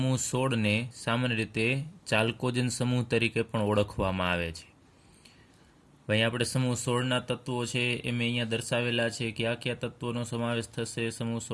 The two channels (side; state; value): both; identical; correlation 1.00